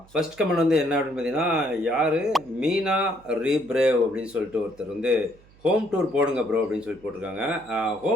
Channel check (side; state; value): right; noise; hum, 27 dB below the sound